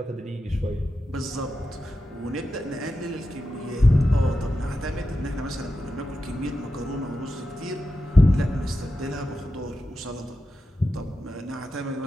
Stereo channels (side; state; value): both; normal; correlation 0.90